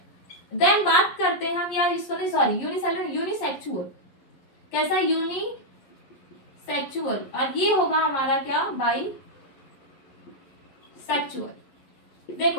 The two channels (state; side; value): late; right; 11 ms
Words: देन बात करते हैं हम, या इसको नहीं, सॉरी, यूनिसेलुलर, यूनिसेक्सुअल, कैसा, यूनिसेक्सुअल, और ये होगा हमारा क्या, बाई सेक्सुअल।